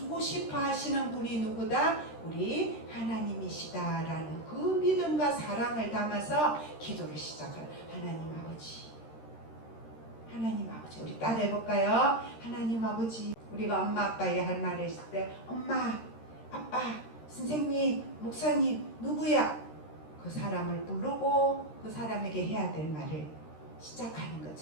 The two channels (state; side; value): late; right; 13 ms